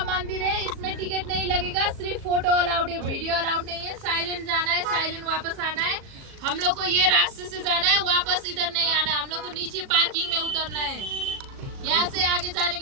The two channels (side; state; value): left; late; 37 ms